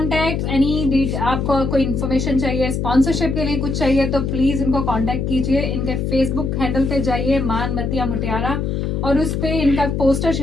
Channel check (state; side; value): noise; left; hum, 1 dB below the sound